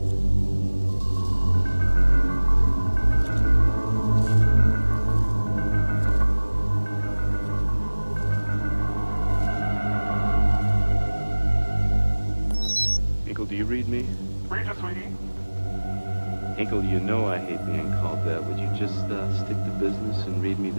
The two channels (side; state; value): both; inverted; correlation -1.00